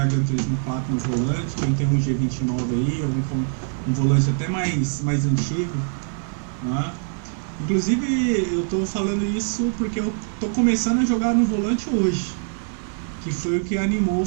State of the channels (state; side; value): silent; left; 59 dB below the other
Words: Gran Turismo 4 no volante, quem tem um G29 aí, ou um volante até mais antigo, né? Inclusive, eu tô falando isso porque eu tô começando a jogar no volante hoje, que foi o que animou a